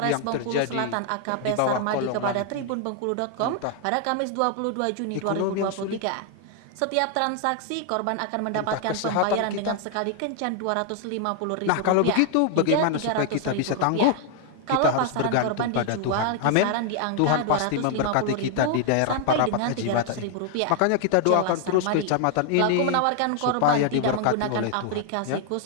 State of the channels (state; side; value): different; both; correlation 0.00